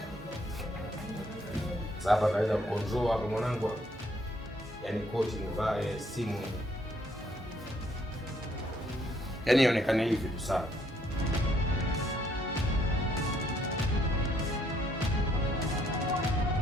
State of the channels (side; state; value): both; normal; correlation 0.69